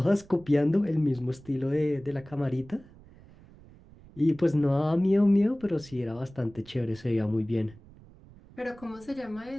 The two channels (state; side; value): noise; right; rumble, 23 dB below the sound